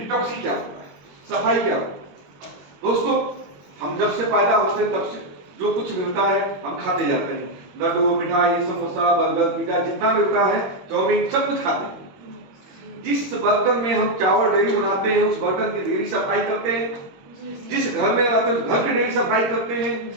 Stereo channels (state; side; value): late; left; 21 ms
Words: क्या होता है, सफाई क्या होता है। दोस्तों, हम जब से पैदा होते हैं तब से जो कुछ मिलता है हम खाते जाते हैं। लड्डू, मिठाई, समोसा, बर्गर, पिज्जा, जितना मिलता है, चाउमीन, सब कुछ खाते हैं। जिस बर्तन में हम चावल डेली बनाते हैं उस बर्तन की डेली सफाई करते हैं। जिस घर में रहते हैं उस घर की डेली सफाई करते हैं।